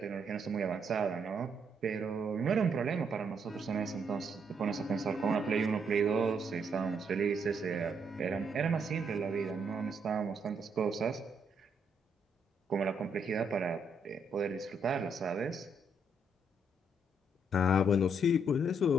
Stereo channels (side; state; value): both; normal; correlation 0.74